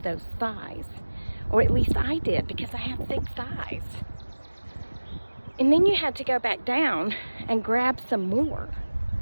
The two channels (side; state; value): both; inverted; correlation -1.00